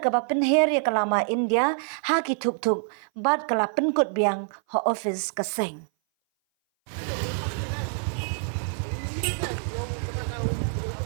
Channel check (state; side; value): silent; left; 58 dB below the other